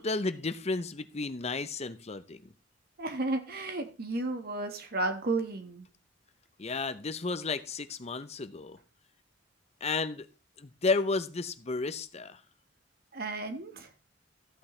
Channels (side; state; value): both; normal; correlation 0.30